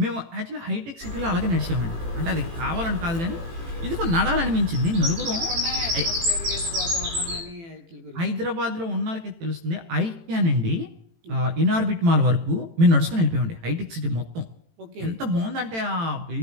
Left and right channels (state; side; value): late; left; 18 ms